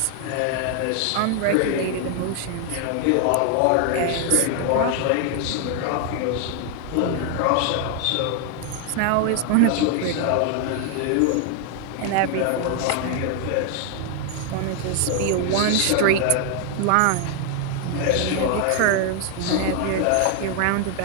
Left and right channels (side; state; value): both; different; correlation 0.00